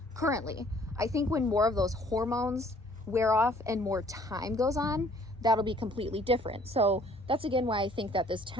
currently. I think when more of those hormones wear off and more time goes on, that'll be completely different. So that's again why I think that this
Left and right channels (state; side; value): normal; both; correlation 0.58